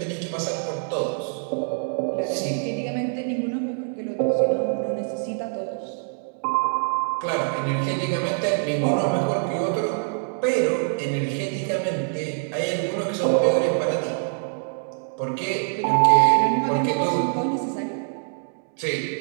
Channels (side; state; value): left; silent; 62 dB below the other